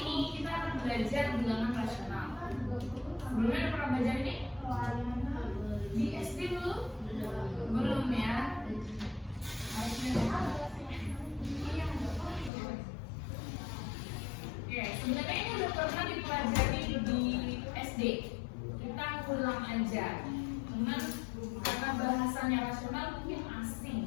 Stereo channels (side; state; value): right; drops out; at 12.5 s